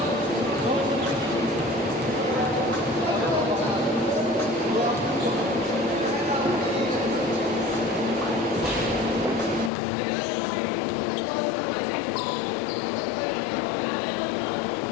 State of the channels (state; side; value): drops out; right; at 9.7 s